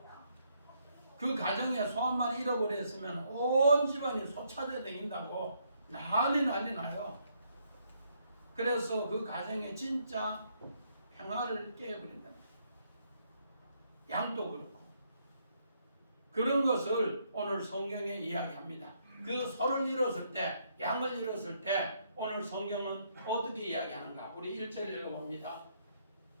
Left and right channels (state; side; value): inverted; both; correlation -0.73